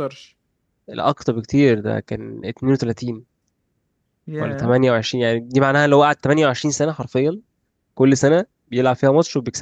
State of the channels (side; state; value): both; identical; correlation 1.00